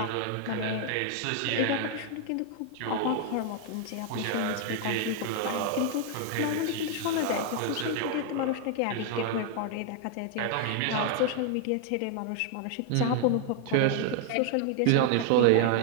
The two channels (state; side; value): different; both; correlation 0.00